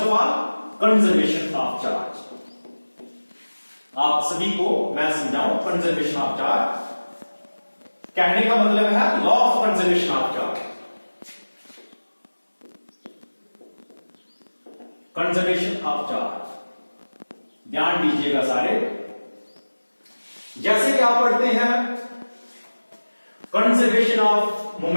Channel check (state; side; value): inverted; both; correlation -1.00